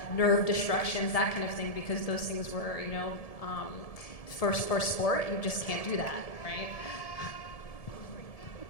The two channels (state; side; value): late; right; 1.7 ms